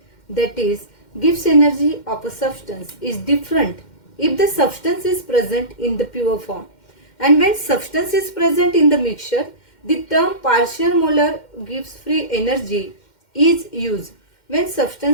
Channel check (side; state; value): right; late; 2.1 ms